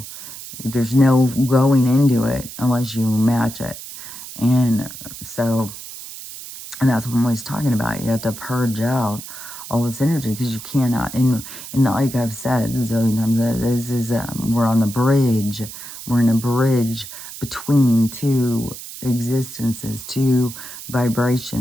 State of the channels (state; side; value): noise; right; hiss, 12 dB below the sound